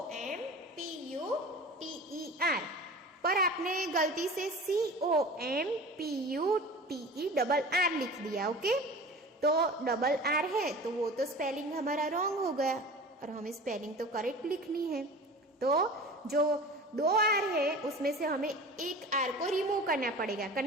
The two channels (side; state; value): both; normal; correlation 0.37